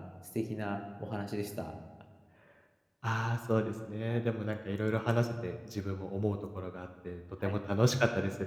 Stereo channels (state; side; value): identical; both; correlation 1.00